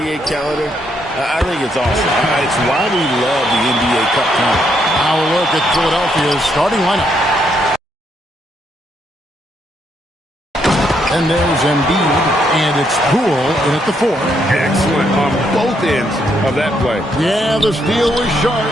calendar, I think it's awesome. It's why we love the NBA Cup tournament. Now a look at Philadelphia's starting lineup. And there's Embiid, and it's Poole in at the 4. Excellent on both ends of that play. Yeah, the steal was sharp,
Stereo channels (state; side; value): normal; both; correlation 0.75